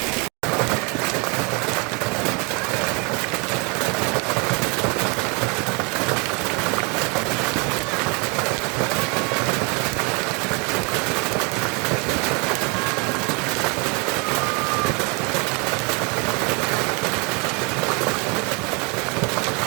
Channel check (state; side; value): quieter; left; 32.0 dB